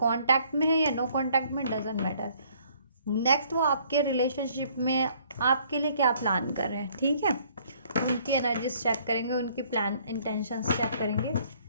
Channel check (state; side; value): inverted; both; correlation -0.61